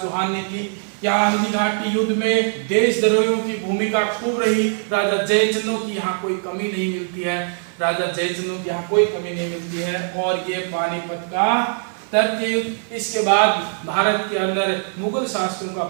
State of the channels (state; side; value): silent; left; 65 dB below the other